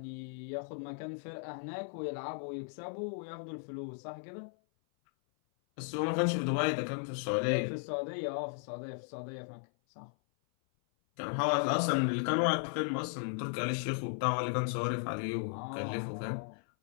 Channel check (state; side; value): silent; right; 54 dB below the other